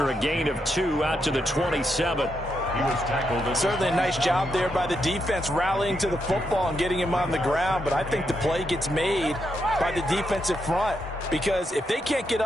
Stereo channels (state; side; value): normal; both; correlation 0.81